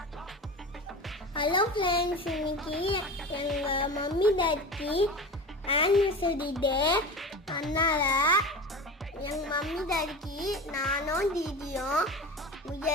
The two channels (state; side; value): normal; both; correlation 0.31